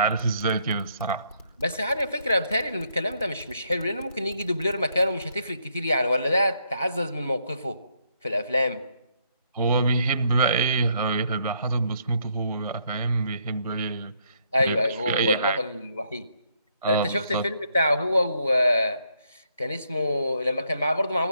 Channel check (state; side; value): inverted; both; correlation -0.72